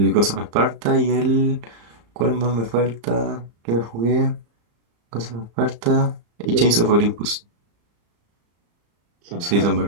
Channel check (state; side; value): late; left; 35 ms